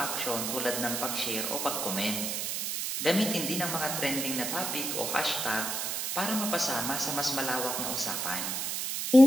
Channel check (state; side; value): noise; right; hiss, 1 dB below the sound